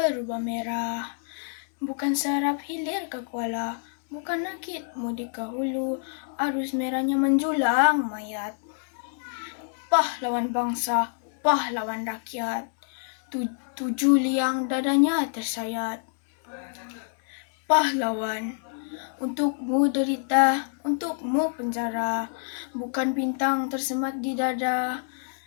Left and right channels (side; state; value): right; silent; digital silence